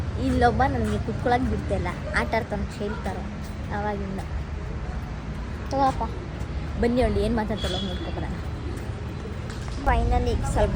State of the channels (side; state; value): both; identical; correlation 1.00